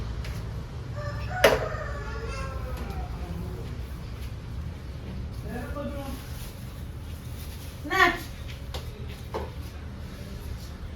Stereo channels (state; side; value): identical; both; correlation 1.00